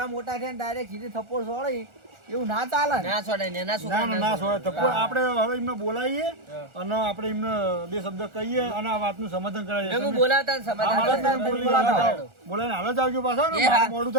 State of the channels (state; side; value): late; left; 1.4 ms